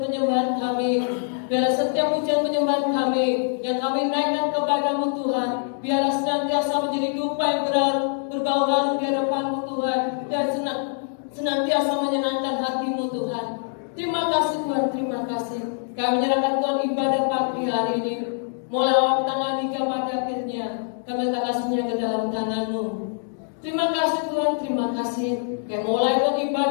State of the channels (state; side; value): silent; right; digital silence